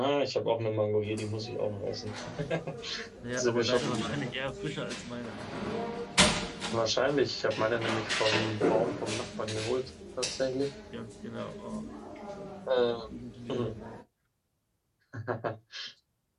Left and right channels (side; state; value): both; identical; correlation 1.00